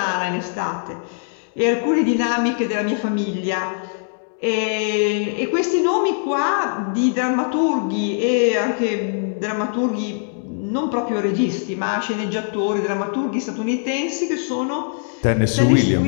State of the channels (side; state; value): right; silent; digital silence